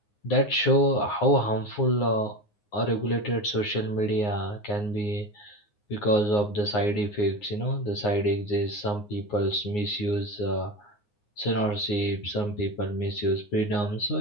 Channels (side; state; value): right; late; 9.6 ms